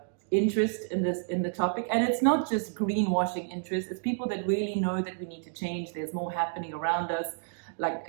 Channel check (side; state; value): left; silent; digital silence